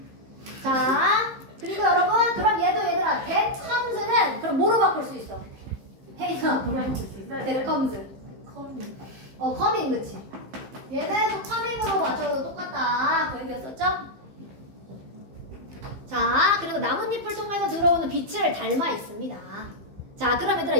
자, 그리고 여러분 그럼 얘들아 that comes는 그럼 뭐로 바꿀 수 있어? 헤이나 뭐로 바꿀 수 있어? that comes. coming 그치? 얘는 coming으로 맞춰도 똑같다. 그 얘기였었죠? 자, 그리고 나뭇잎을 통해서 들어오는 빛을 닮아 있습니다. 자, 그럼 얘들아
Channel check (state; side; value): late; left; 15 ms